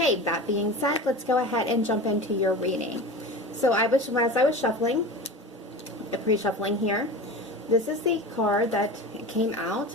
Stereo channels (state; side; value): normal; both; correlation 0.31